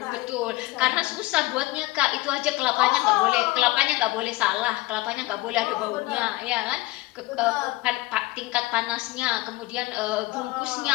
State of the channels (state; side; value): quieter; right; 20.3 dB